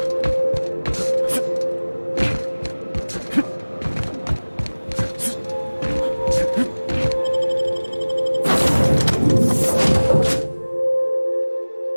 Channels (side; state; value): both; inverted; correlation -1.00